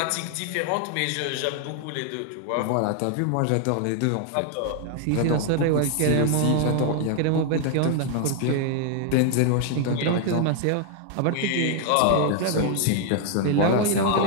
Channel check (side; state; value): both; different; correlation 0.00